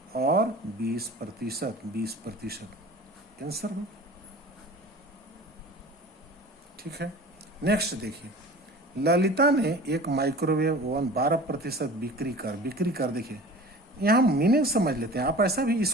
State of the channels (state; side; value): normal; both; correlation 0.40